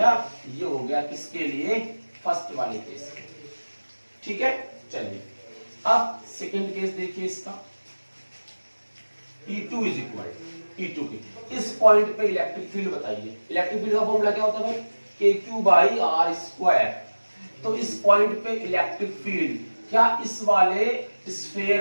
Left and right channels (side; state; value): both; inverted; correlation -1.00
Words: ये हो गया किसके लिए, फर्स्ट वाले केस, ठीक है। चलिए अब सेकंड केस देखिए इसका, E2 इज इक्वल E2 की, इस पॉइंट पे इलेक्ट्रिक फील्ड बताइए। इलेक्ट्रिक फील्ड का फॉर्मूला क्या होता है भाई, KQ बाई R स्क्वायर। तो इस पॉइंट पे इलेक्ट्रिक फील्ड क्या इस वाले